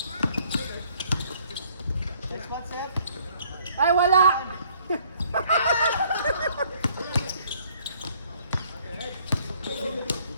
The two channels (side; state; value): both; inverted; correlation -0.62